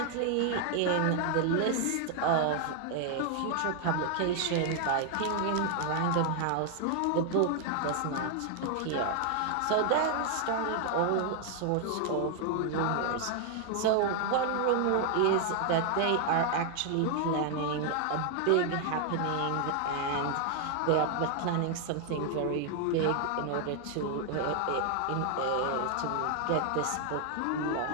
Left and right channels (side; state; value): both; different; correlation 0.00